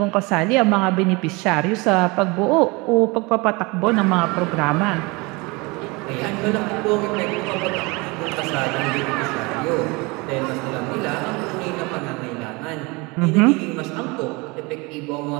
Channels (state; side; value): quieter; left; 26.1 dB